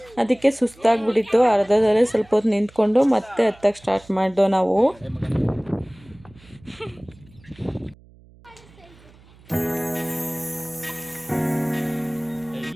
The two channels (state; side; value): noise; right; hum, 26 dB below the sound